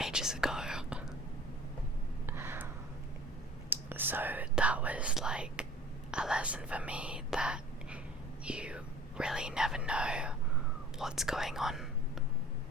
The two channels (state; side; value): normal; both; correlation 0.46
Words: ages ago. So that was like a lesson for me that you really never know what's going on